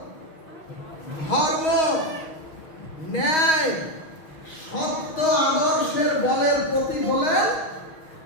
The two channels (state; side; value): late; right; 6.3 ms